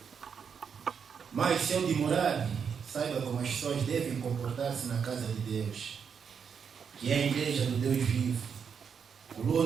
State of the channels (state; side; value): quieter; left; 6.8 dB